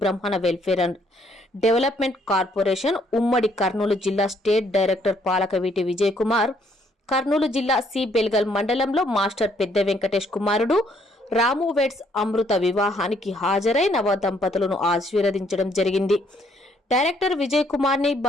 బ్రహ్మణ వెల్ఫేర్ అండ్ డెవలప్మెంట్ కార్పొరేషన్ ఉమ్మడి కర్నూలు జిల్లా స్టేట్ డైరెక్టర్ పాలకవీటి విజయ్ కుమార్ కర్నూలు జిల్లా సి బెల్గల్ మండలంలో మాస్టర్ పెద్ద వెంకటేష్ కుమారుడు రాము వెడ్స్ అమృత వివాహానికి హాజరై నవ దంపతులను ఆశీర్వదించడం జరిగింది. డైరెక్టర్ విజయ్ కుమార్ ని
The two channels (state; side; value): normal; both; correlation 0.68